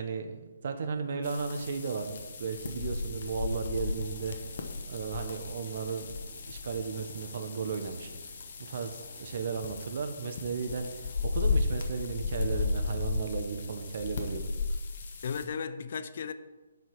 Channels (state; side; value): inverted; both; correlation -0.72